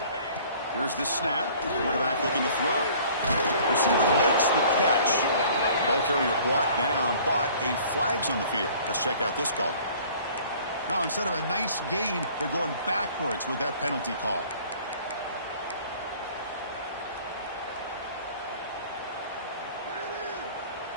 Here's the snap. Quarterback looking to throw. Receiver makes the catch. Ball carrier brought down, but a flag's on the field. Let's check out this call. Now, instead of a nice gain, they're going backwards with that penalty call.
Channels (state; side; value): inverted; both; correlation -0.51